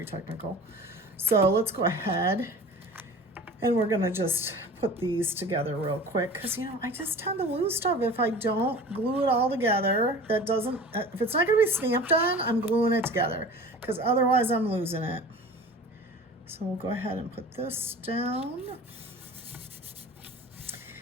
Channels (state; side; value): normal; both; correlation 0.39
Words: technical. So let's go ahead and we're gonna just put these together real quick because, you know, I just tend to lose stuff if I don't glue it all together. That doesn't, if it's not gonna be stamped on, I'm gluing it together because otherwise I'm losing it. So we'll go ahead and put this down.